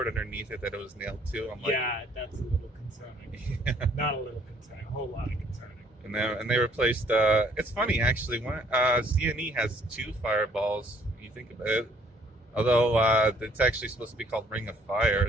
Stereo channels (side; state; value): both; normal; correlation 0.62